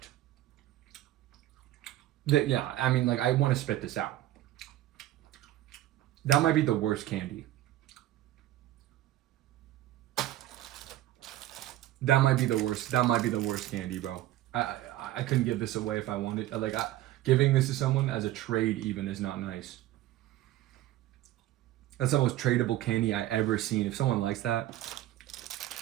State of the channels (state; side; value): quieter; left; 14.4 dB